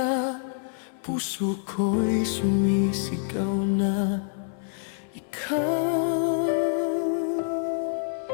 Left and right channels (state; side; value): silent; right; 60 dB below the other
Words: puso ko'y sumisigaw na ikaw.